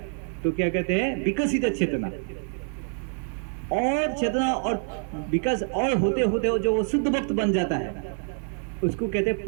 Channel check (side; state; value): left; silent; 59 dB below the other